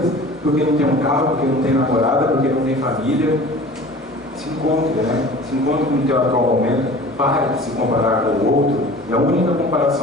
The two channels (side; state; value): both; normal; correlation 0.42